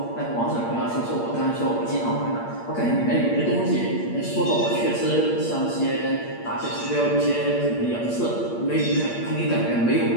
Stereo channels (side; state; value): right; late; 8.6 ms